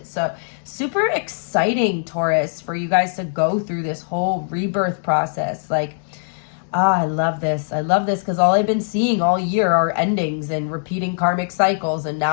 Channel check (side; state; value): right; silent; digital silence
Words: So super exciting, Taurus, for you guys to go through this whole rebirth process. Like, I love this. I love this because all I've been seeing all year are endings and repeating karmic cycles. And